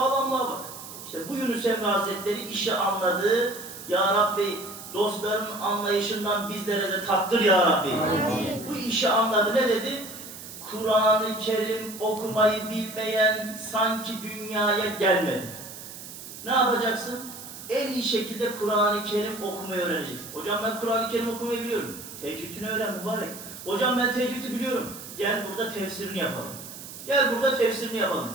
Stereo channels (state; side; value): noise; right; hiss, 13 dB below the sound